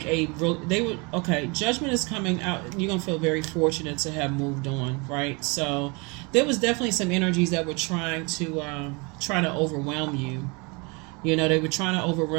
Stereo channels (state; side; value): quieter; left; 29.4 dB